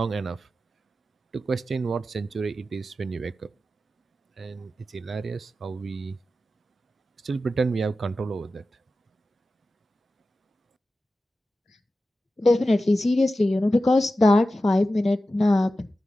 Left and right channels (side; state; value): both; normal; correlation 0.93